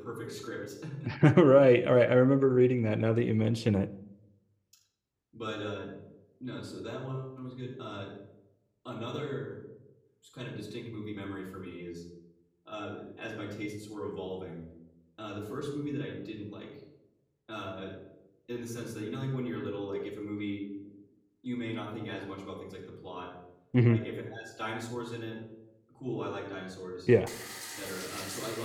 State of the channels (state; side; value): identical; both; correlation 1.00